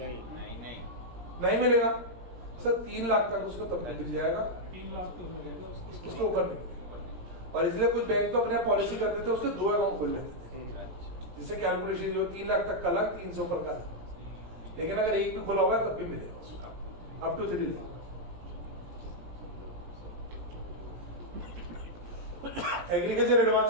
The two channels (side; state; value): left; late; 17 ms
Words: नहीं मिलेगा सर। 3 लाख तक उसको तब तक मिल जाएगा, 3 लाख तो मिलेगा उसको ऊपर नहीं मिलेगा। और इसलिए कुछ बैंक तो अपने पॉलिसी करते थे, उसके 2 अकाउंट खोल लेते थे, जिससे कैलकुलेशन जो 3 लाख तक का अलग, 300 पर का अलग। लेकिन अगर एक भी खुला होगा तब भी मिलेगा उसको, up to 3 lakh. Agriculture